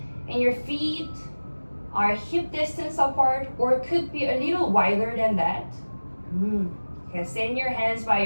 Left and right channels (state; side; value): inverted; both; correlation -1.00